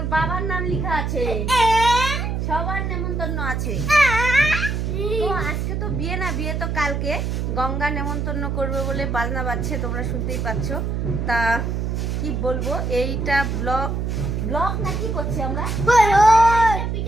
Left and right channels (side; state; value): right; noise; hum, 1 dB below the sound